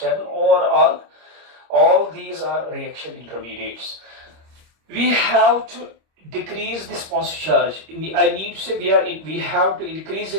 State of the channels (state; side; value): late; left; 26 ms